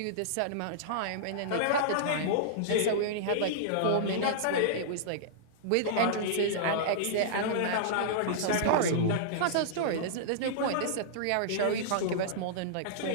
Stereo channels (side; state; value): both; different; correlation -0.02